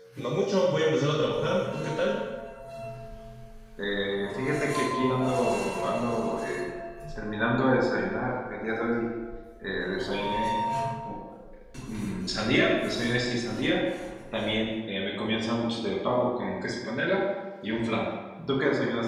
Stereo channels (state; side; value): identical; both; correlation 1.00